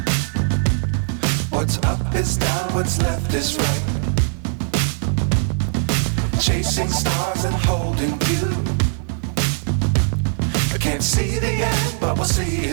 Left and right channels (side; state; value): left; silent; digital silence